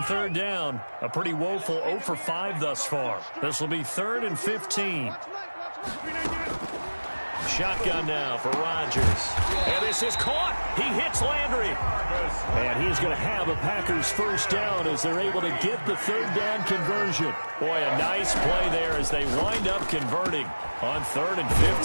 down. A pretty woeful 0 for 5 thus far. This will be 3rd and 15. Shotgun now for Rodgers. And this is caught. He hits Landry. And he's going to have a Packers first down as they're able to get the third down conversion. Boy, a nice play there as they wind up converting on 3rd and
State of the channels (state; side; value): inverted; both; correlation -1.00